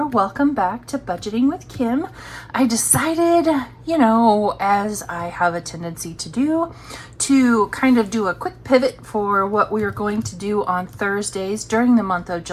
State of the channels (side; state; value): both; identical; correlation 1.00